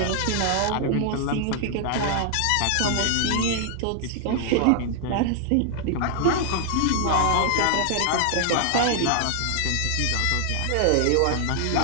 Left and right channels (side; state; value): both; different; correlation 0.00